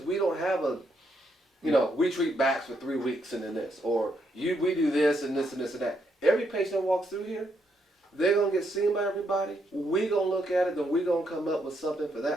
we don't have a, we treat backs for 3 weeks and then this, or we do this and this and this and that. Every patient that walks through here, they're going to get seen by everybody. We're going to look at it, then we're going to come up with something for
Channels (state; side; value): normal; both; correlation 0.76